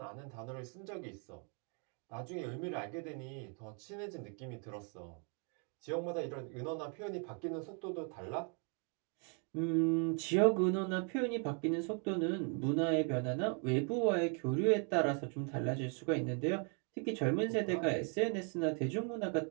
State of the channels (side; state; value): left; quieter; 39.8 dB